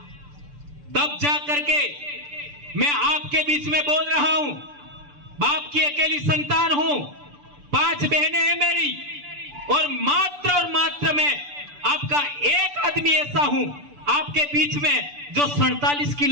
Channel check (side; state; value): left; late; 6.9 ms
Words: तब जा करके मैं आपके बीच में बोल रहा हूं। बाप की अकेली संतान हूं, 5 बहनें हैं मेरी, और मात्र मैं आपका एक आदमी ऐसा हूं आपके बीच में जो 47